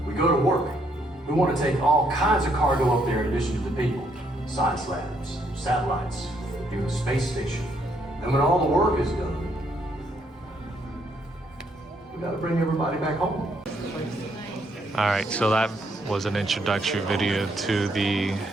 we go to work. We want to take all kinds of cargo up there in addition to the people. Science labs, satellites, even a space station. And when all the work is done, we gotta bring everybody back home. Alright, so that was an introductory video to the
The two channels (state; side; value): normal; both; correlation 0.72